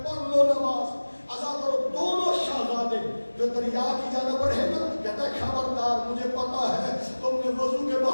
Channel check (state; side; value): inverted; both; correlation -1.00